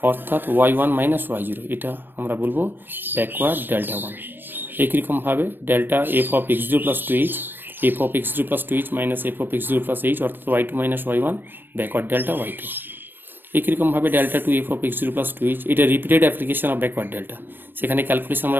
অর্থাৎ y1 মাইনাস y0। এটা আমরা বলবো ব্যাকওয়ার্ড ডেল্টা 1। একই রকমভাবে delta F of x0 plus 2h, F of x0 plus 2h minus F of x0 plus h, অর্থাৎ y2 minus y1, backward delta y2। একই রকমভাবে delta two F of x0 plus 2h, এটা repeated application of backward delta. সেখানে calculation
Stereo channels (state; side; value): late; left; 0.095 ms